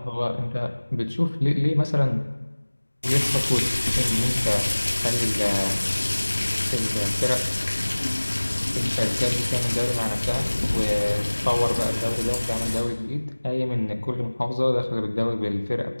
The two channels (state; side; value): inverted; both; correlation -1.00